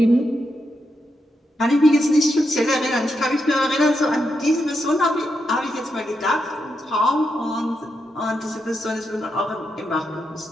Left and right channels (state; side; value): normal; both; correlation 0.84